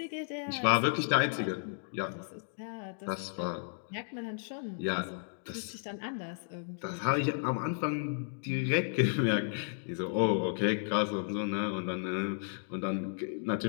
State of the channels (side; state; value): right; silent; digital silence